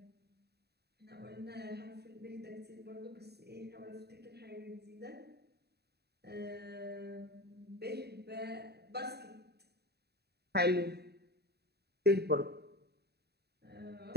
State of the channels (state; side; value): late; left; 0.47 ms